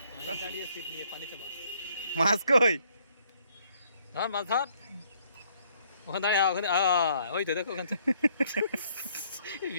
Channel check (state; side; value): inverted; both; correlation -0.66